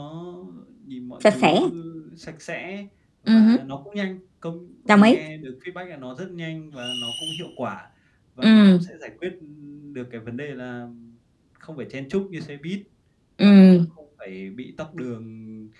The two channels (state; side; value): identical; both; correlation 1.00